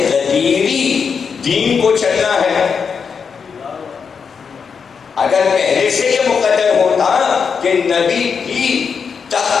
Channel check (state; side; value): quieter; right; 6.1 dB